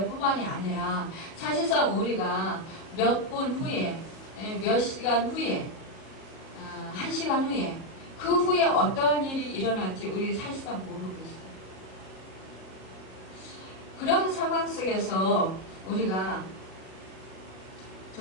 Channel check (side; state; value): right; late; 37 ms